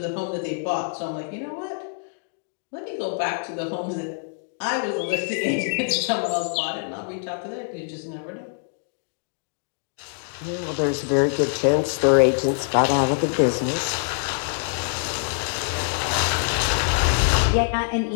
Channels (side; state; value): right; silent; digital silence